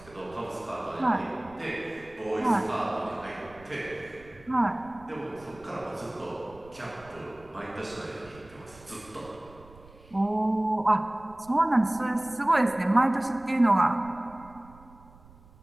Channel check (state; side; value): noise; right; rumble, 23 dB below the sound